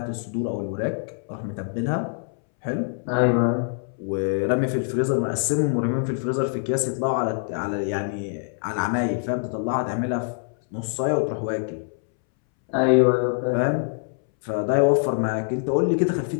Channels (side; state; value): right; silent; 62 dB below the other